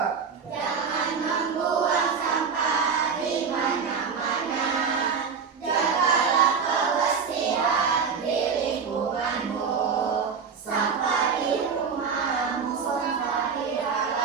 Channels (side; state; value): left; quieter; 6.0 dB